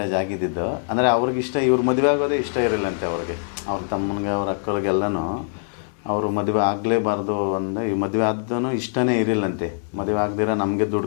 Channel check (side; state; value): right; silent; digital silence